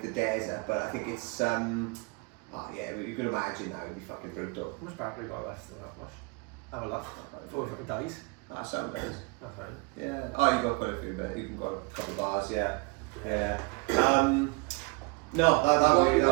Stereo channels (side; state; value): left; quieter; 29.0 dB